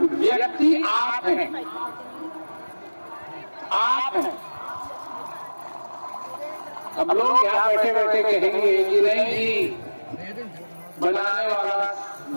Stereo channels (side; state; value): both; inverted; correlation -1.00